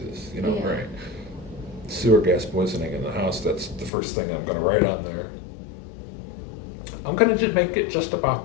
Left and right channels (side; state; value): right; drops out; at 3.9 s